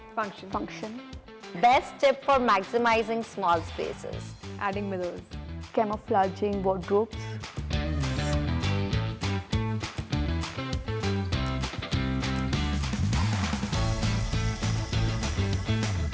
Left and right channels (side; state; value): both; identical; correlation 1.00